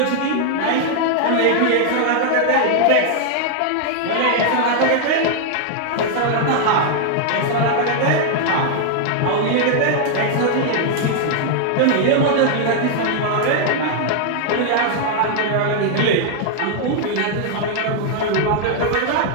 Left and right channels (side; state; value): both; different; correlation 0.00